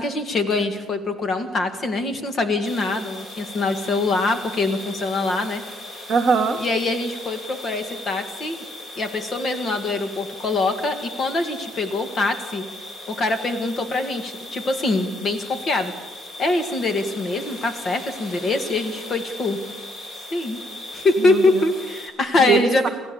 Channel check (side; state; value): both; normal; correlation 0.70